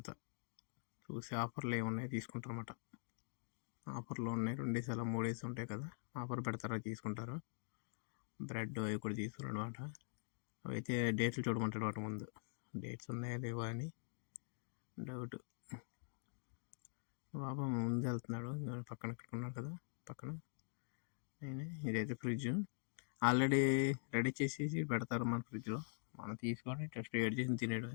చూసి ఆఫర్లు ఏమున్నాయి తీసుకుంటారన్నమాట. ఆఫర్లు ఉన్నాయి, 2 డేస్ అలా 3 డేస్ ఉంటాయి కదా, ఆఫర్ పెడతారా తీసుకుంటారు. బ్రెడ్ అవి కూడా తీసుకున్నాడు అనమాట. అయితే డేట్లు చూడమంటాడు వాటి ముందు, డేట్స్ ఉన్నాయా లేవా అని డౌట్. బాబా ముందు వెళ్తున్నాడు, పక్కన ఇక్కడ ఉన్నాడు కదా పక్కన. ఇదైతే ఫ్రిడ్జ్ ఆల్రెడీ రెడీ చేసేసి పెడతారు మన ఫ్రిడ్జ్లో. మనం తీసుకొని జస్ట్ వేడి చేసి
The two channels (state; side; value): silent; right; digital silence